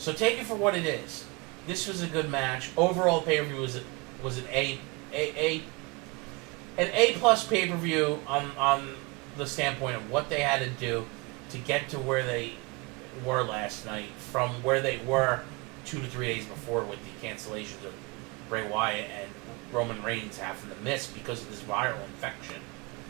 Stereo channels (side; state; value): left; quieter; 26.5 dB